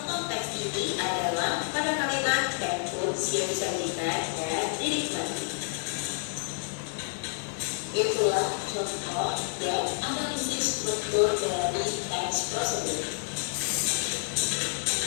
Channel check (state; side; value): silent; right; 58 dB below the other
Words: teks ini adalah pada kalimat and foods yang disajikan dan dinikmati. Itulah contoh dan analisis struktur dari teks prosedur.